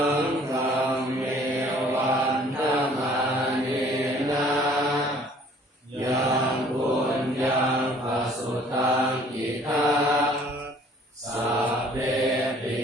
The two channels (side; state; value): both; normal; correlation 0.55